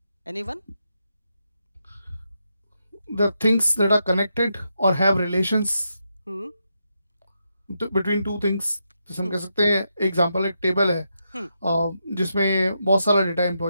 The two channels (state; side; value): inverted; both; correlation -0.84